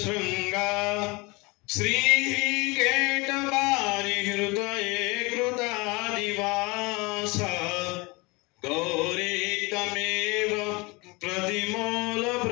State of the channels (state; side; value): quieter; right; 25.9 dB